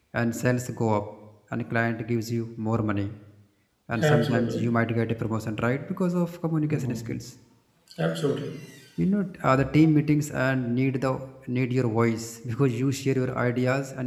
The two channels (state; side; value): identical; both; correlation 1.00